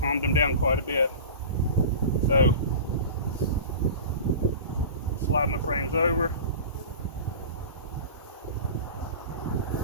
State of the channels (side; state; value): both; inverted; correlation -0.34